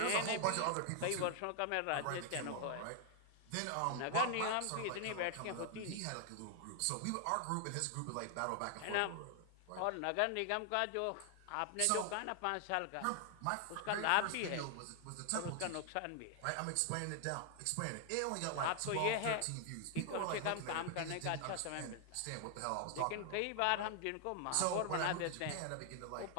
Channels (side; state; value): both; different; correlation 0.00